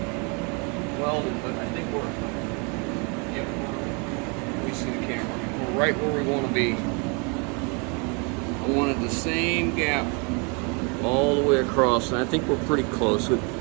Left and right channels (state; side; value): quieter; left; 33.6 dB